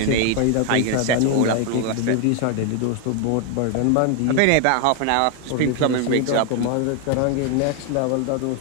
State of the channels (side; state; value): both; different; correlation 0.01